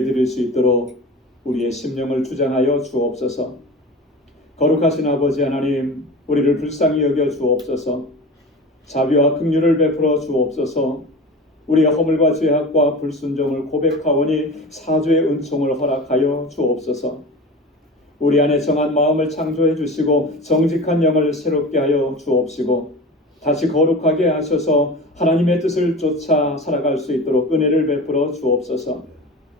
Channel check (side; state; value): both; normal; correlation 0.33